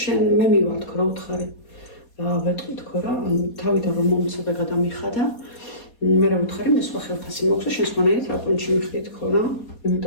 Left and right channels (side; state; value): right; late; 4.2 ms